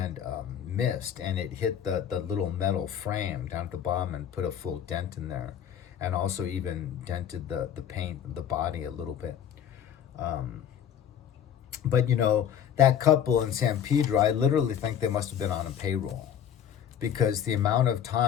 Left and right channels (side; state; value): right; quieter; 9.3 dB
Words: missed, and it hit the little metal frame down at the bottom and put a full dent in there, and also even dented the paint of the body a little bit. But that couple in San Pedro, I literally think they must have been on a payroll, because the amount of